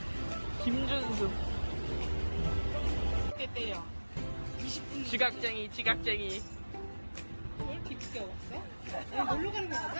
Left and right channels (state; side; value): inverted; both; correlation -1.00